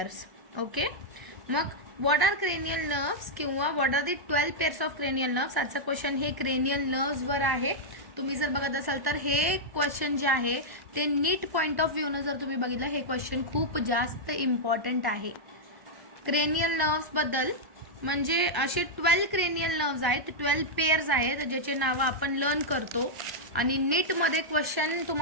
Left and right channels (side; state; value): left; late; 1.1 ms